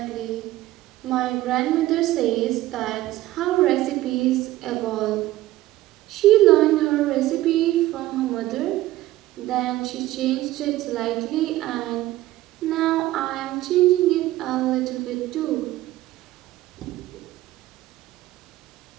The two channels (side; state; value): left; quieter; 16.0 dB